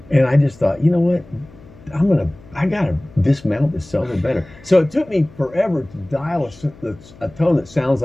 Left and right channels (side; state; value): left; noise; hum, 23 dB below the sound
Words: And I just thought, you know what? I gotta dismount this solo better. So it took me forever to dial a tone that sounds